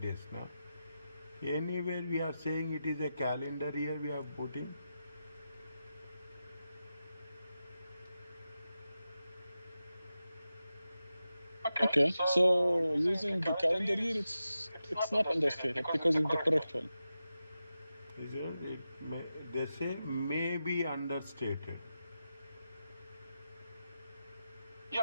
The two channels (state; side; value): inverted; both; correlation -0.91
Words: days now. Anywhere we are saying it is a calendar year, we are putting. Okay, so using the calendar year, it's not understated because it's the correct one. They say may be understated.